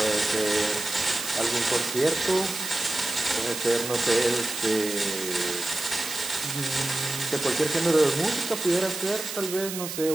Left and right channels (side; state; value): right; noise; hiss, 7 dB below the sound